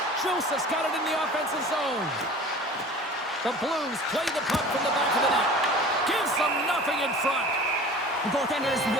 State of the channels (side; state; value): both; normal; correlation 0.41